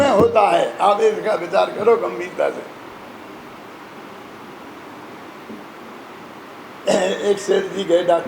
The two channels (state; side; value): identical; both; correlation 1.00